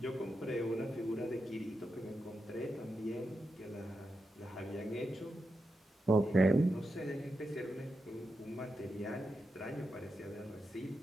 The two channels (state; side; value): normal; both; correlation 0.87